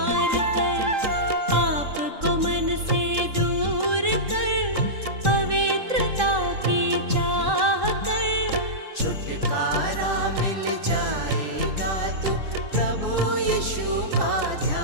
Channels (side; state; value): left; late; 3.7 ms